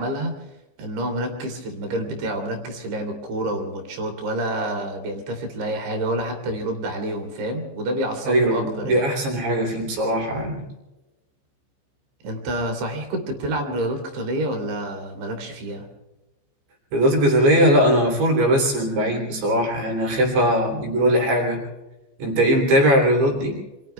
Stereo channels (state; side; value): late; left; 15 ms